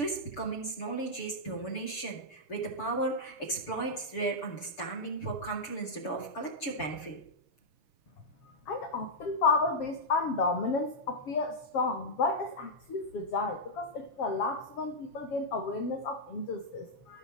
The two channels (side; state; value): right; late; 6.9 ms